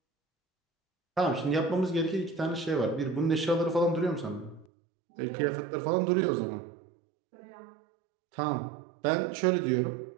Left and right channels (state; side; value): drops out; left; at 4.7 s